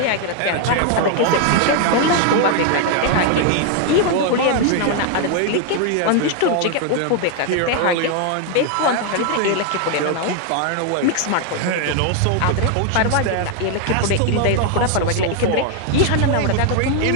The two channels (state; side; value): different; both; correlation 0.01